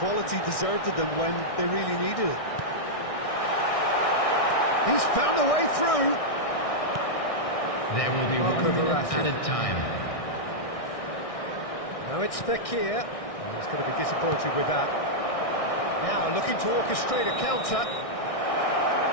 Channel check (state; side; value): late; right; 1.6 ms